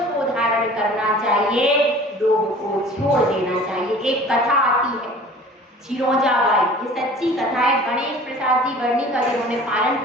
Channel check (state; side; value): normal; both; correlation 0.45